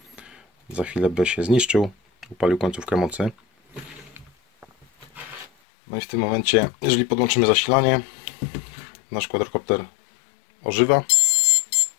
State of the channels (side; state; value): right; drops out; at 5.5 s